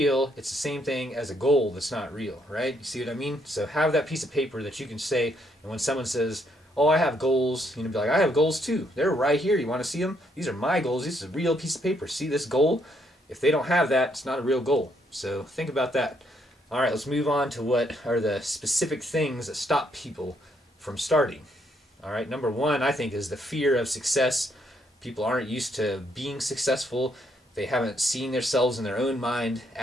it's the same thing as a goal that's not real, right? You see what I mean? So have that piece of paper that you can say, and when someone says, "Oh, I have goals," be like, "I have goals too. They're right here. You want to see them? These are my goals. This is a real piece of paper. See this goal?" If they don't have that, it's not a real goal. So think about that. All right, let's move on to what are the specific things that stop people from starting. All right, number 1, I think, is the fear of success. People aren't used to being successful. They haven't seen themselves in their own mind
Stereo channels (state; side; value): normal; both; correlation 0.72